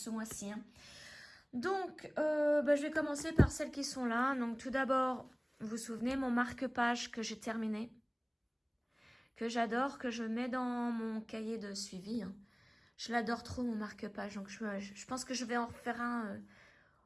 mois-ci. Donc je vais commencer par celles qui sont là. Donc tout d'abord, vous vous souvenez mon marque-page que j'ai terminé. Que j'adore, que je mets dans mon cahier de suivi. Je l'adore trop mon marque-page, donc je pense que je vais en refaire un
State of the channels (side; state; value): both; identical; correlation 1.00